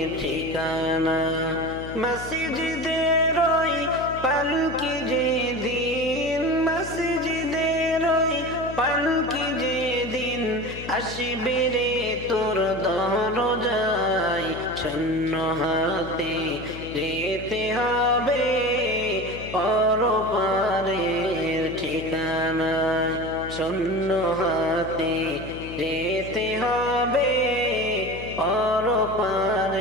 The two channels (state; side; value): noise; left; hum, 12 dB below the sound